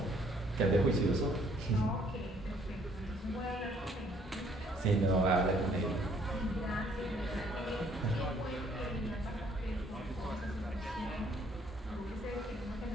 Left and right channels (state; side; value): normal; both; correlation 0.63